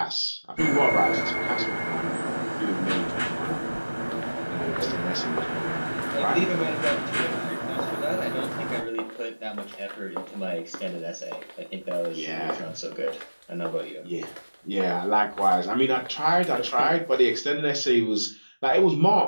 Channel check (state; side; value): inverted; both; correlation -1.00